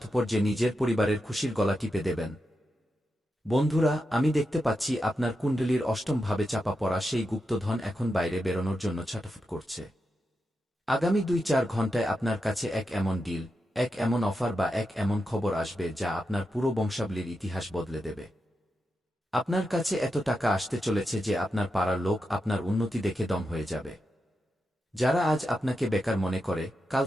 যে নিজের পরিবারের খুশির গলা টিপে দেবেন? বন্ধুরা, আমি দেখতে পাচ্ছি আপনার কুণ্ডলীর অষ্টম ভাবে চাপা পড়া সেই গুপ্তধন এখন বাইরে বেরোনোর জন্য ছটফট করছে। আগামী 2-4 ঘন্টায় আপনার কাছে এক এমন ডিল, এক এমন অফার বা এক এমন খবর আসবে যা আপনার পুরো বংশাবলীর ইতিহাস বদলে দেবে। আপনার কাছে এত টাকা আসতে চলেছে যে আপনার পাড়ার লোক আপনার উন্নতি দেখে দম হয়ে যাবে। যারা আজ আপনাকে বেকার মনে করে, কাল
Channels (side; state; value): both; normal; correlation 0.87